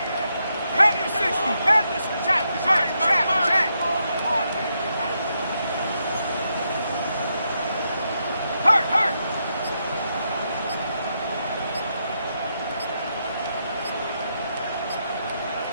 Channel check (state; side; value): inverted; both; correlation -0.81